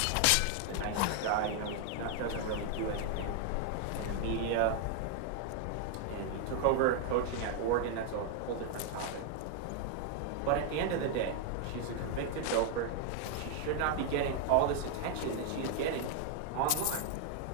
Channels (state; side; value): different; both; correlation 0.00